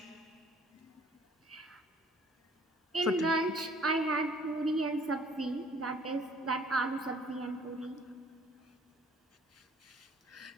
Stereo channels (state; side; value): normal; both; correlation 0.57